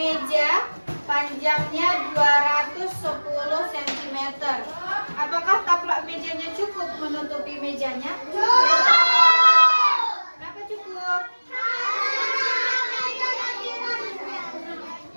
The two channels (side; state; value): both; inverted; correlation -1.00